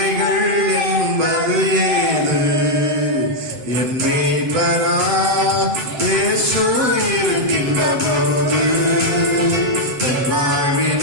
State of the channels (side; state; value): left; late; 8.1 ms